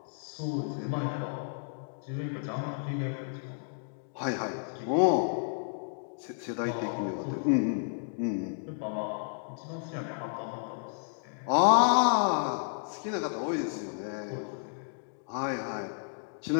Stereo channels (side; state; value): right; silent; digital silence